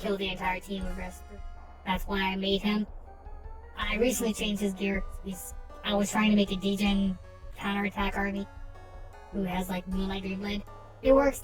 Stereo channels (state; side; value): identical; both; correlation 1.00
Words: the entire team with Rescue. That's why I made him. I recently changed his gear. I was trying to make a degen counterattack army who has like Moonlight Dreamblade. It works